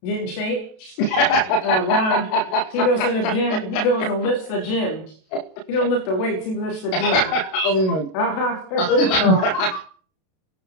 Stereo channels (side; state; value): right; late; 32 ms